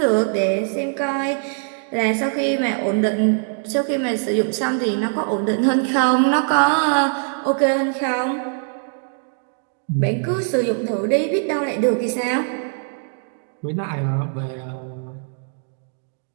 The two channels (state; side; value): silent; left; 64 dB below the other